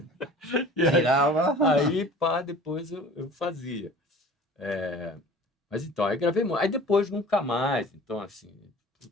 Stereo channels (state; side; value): normal; both; correlation 0.44